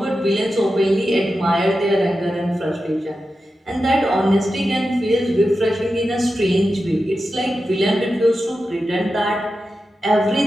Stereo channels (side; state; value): both; normal; correlation 0.91